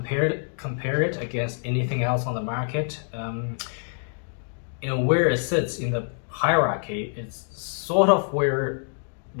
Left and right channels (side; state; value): right; silent; digital silence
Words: it against anything else on the market. Where it sits in the hierarchy, it's sort of where